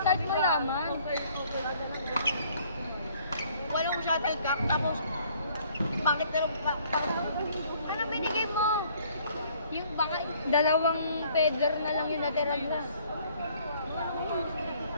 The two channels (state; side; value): inverted; both; correlation -0.60